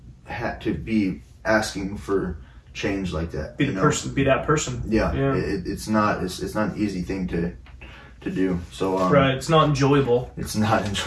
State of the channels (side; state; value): both; identical; correlation 1.00